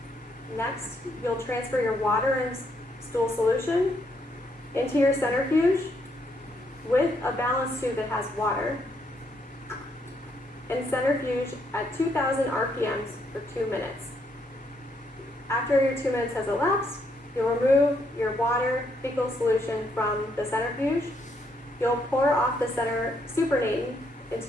Next, you'll transfer your water and stool solution into your centrifuge with a balance tube that has water, and centrifuge at 2,000 RPMs for 2 minutes. After your 2 minutes has elapsed, you'll remove your water fecal solution from the centrifuge. You'll pour off the center supernatant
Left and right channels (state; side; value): normal; both; correlation 0.74